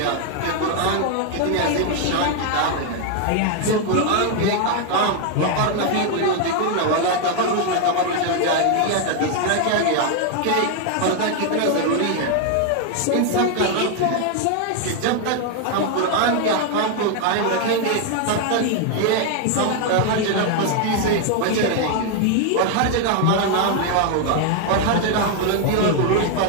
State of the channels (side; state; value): both; different; correlation 0.00